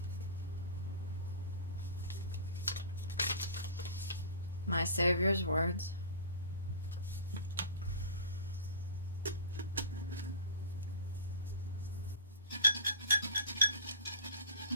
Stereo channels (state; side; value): inverted; both; correlation -0.36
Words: My Savior's words.